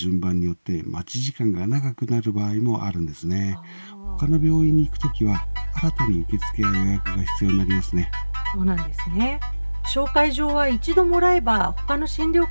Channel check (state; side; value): inverted; both; correlation -1.00